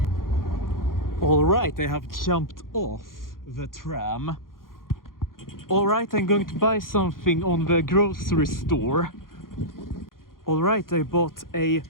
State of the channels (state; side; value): late; right; 0.91 ms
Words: Alright, I have jumped off the tram. Alright, I'm going to buy something on the grocery store. Alright, I bought a